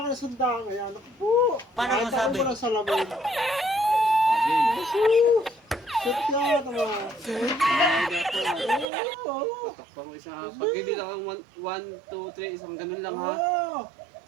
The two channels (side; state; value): left; drops out; at 8.8 s